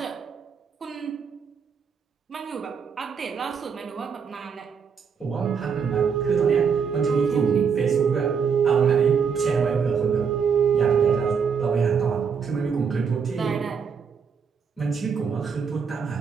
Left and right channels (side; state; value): left; quieter; 6.3 dB